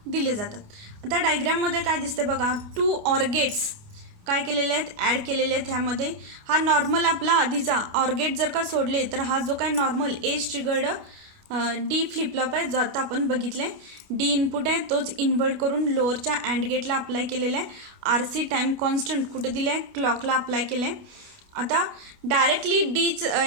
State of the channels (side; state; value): left; late; 28 ms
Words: दिले जातात. आता डायग्राममध्ये काय दिसते बघा, 2 ऑर गेट्स काय केलेले आहेत, ॲड केलेले आहेत. ह्यामध्ये हा नॉर्मल आपला आधीचा ऑर गेट जर का सोडले तर हा जो काय normal age triggered D flip-flop आहे जो आता आपण बघितलं आहे. डी इनपुट आहे तोच इन्व्हर्ट करून लोअरच्या अँड गेटला अप्लाय केलेला आहे. आर सी टाईम कॉन्स्टंट कुठे दिले आहे, क्लॉकला अप्लाय केलं आहे. आता डायरेक्टली डीच